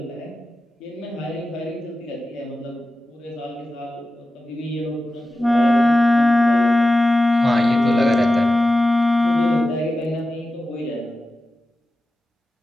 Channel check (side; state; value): both; normal; correlation 0.93